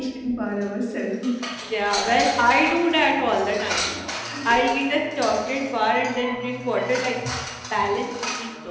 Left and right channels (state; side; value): identical; both; correlation 1.00